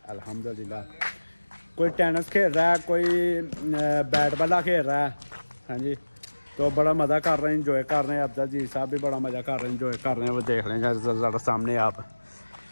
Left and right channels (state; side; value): inverted; both; correlation -1.00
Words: अल्हम्दुलिल्लाह कोई टेनिस खेल रहा है, कोई बैट बॉल खेल रहा है। हाँ जी, तो बड़ा मज़ा कर रहे हैं, इंजॉय कर रहे हैं। अब्दुल जी साहब भी बड़ा मज़ा कर रहे हैं, इंजॉय कर रहे हैं। वो देख लें ज़रा सामने आप